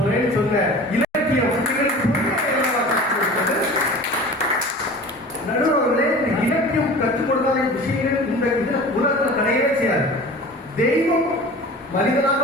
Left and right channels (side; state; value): both; normal; correlation 0.39